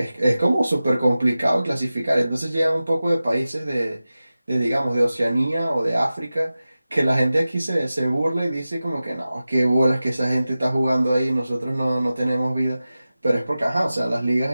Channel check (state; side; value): inverted; both; correlation -0.95